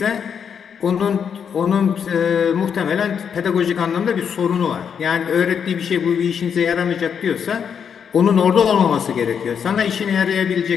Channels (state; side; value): quieter; right; 7.3 dB